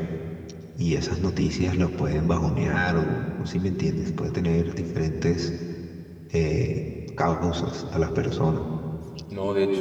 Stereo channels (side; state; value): both; identical; correlation 1.00